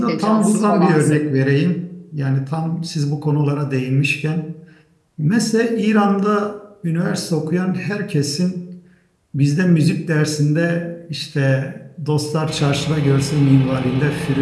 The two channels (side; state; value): both; identical; correlation 1.00